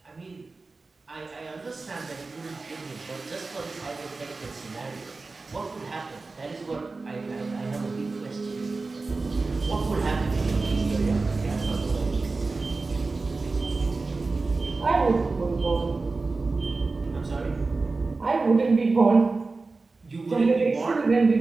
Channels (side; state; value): left; quieter; 3.8 dB